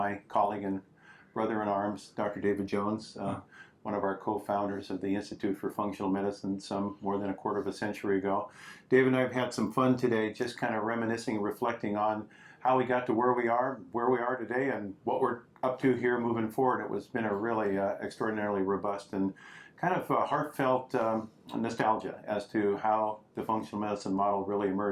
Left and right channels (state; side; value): identical; both; correlation 1.00